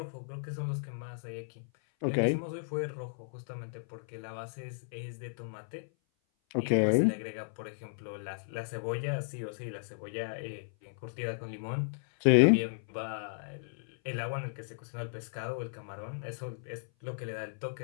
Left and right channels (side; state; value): right; silent; 55 dB below the other